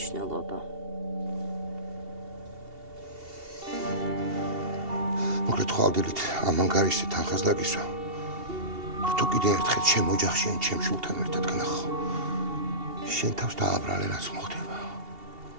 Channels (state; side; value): late; left; 2.7 ms